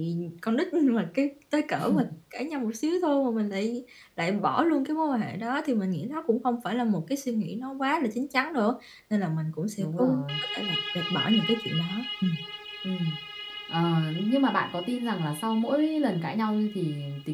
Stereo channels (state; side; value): identical; both; correlation 1.00